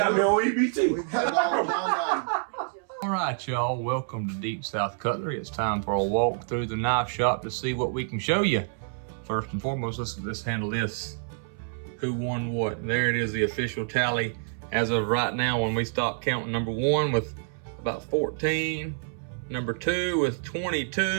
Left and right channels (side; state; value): left; silent; 60 dB below the other